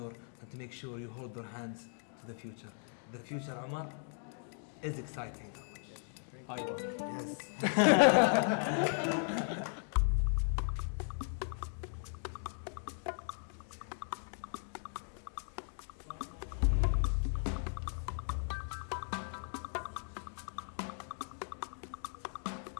and to make sure you hold their hands to the future. The future, Umar, is exciting. Yes.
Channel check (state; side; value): silent; right; 53 dB below the other